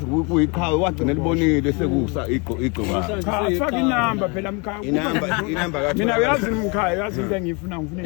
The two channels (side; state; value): right; quieter; 31.2 dB